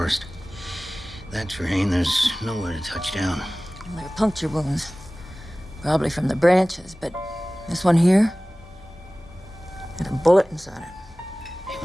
That terrain, there's nowhere to touch down. They're puncture wounds. Probably from the branches, but this one here had a bullet inside it. He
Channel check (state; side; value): normal; both; correlation 0.98